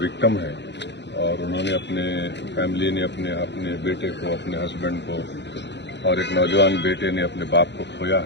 ہے اور انہوں نے اپنے فیملی نے اپنے بیٹے کو، اپنے ہسبینڈ کو اور ایک نوجوان بیٹے نے اپنے باپ کو کھویا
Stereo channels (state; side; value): late; right; 0.51 ms